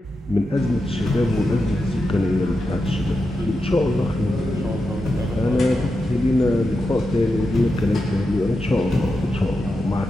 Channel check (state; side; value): normal; both; correlation 0.88